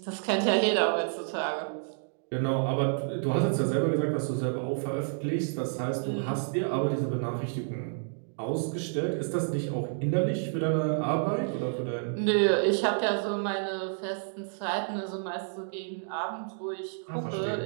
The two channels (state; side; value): silent; left; digital silence